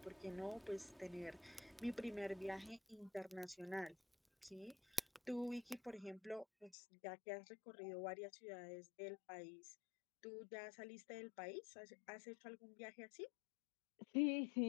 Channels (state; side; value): drops out; right; at 6.8 s